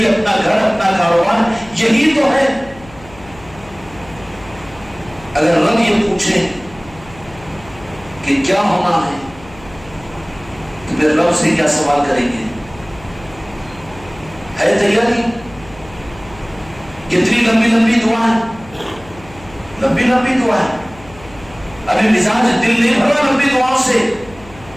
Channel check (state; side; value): noise; left; hum, 21 dB below the sound